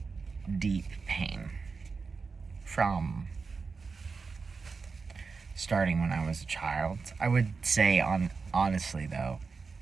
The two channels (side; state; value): left; quieter; 4.7 dB